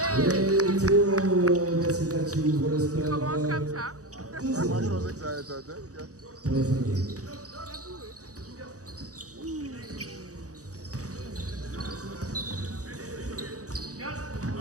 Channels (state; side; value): late; left; 0.66 ms